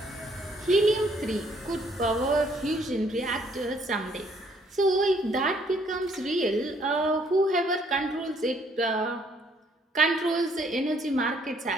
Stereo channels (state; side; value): normal; both; correlation 0.66